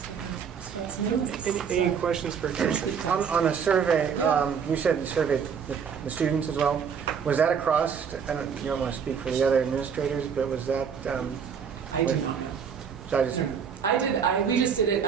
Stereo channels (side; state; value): left; quieter; 6.9 dB